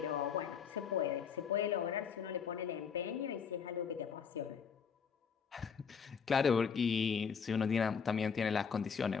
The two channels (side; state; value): right; quieter; 6.5 dB